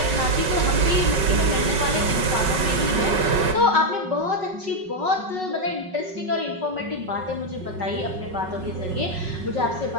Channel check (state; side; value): late; left; 5.4 ms